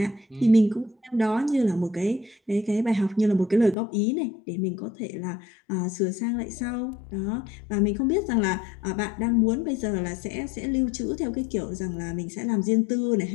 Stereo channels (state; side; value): drops out; right; at 3.8 s